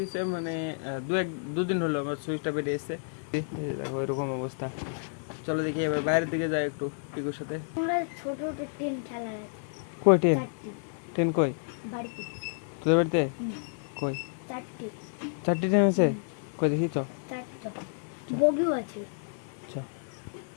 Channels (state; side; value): silent; right; digital silence